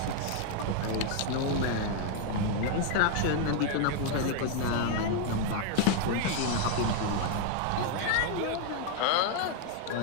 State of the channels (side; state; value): both; different; correlation 0.00